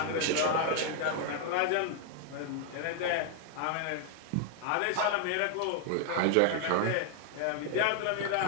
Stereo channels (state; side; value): different; both; correlation 0.00